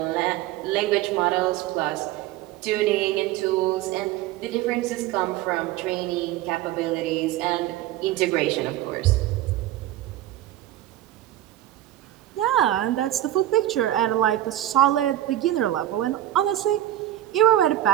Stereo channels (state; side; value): quieter; left; 13.4 dB